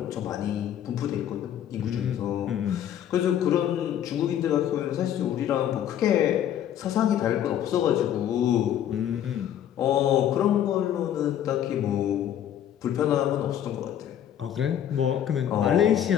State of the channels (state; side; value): quieter; right; 10.4 dB